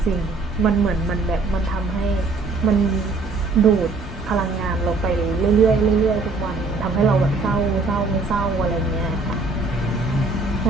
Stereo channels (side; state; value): left; quieter; 3.6 dB